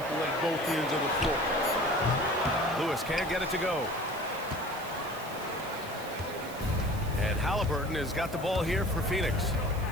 at both ends of the floor. Lewis can't get it to go. And Halliburton has got the ball here for Phoenix.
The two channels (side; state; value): right; noise; hiss, 17 dB below the sound